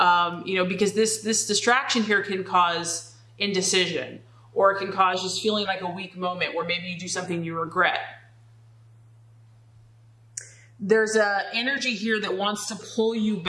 you know, because this distraction here can cause indecision, or it can cause just feeling like a weak moment where maybe you do something you regret. There's an energy here that wants to pull you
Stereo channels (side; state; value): both; identical; correlation 1.00